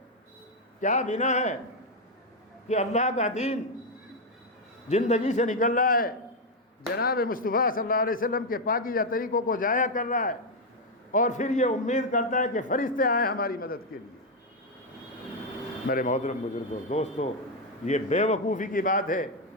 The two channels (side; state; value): both; normal; correlation 0.04